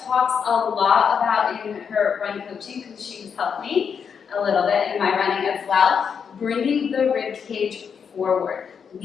talks a lot about in her run coaching because she's helped me a little bit in my running as well, bringing the rib cage forward,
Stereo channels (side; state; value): right; quieter; 6.8 dB